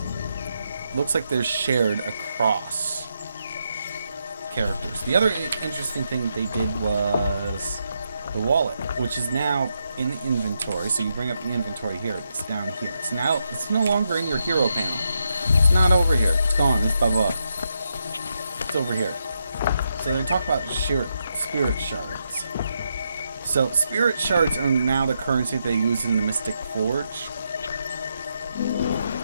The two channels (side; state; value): both; inverted; correlation -0.82